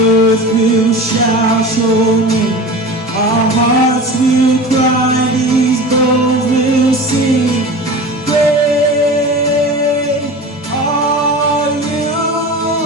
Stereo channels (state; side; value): normal; both; correlation 0.34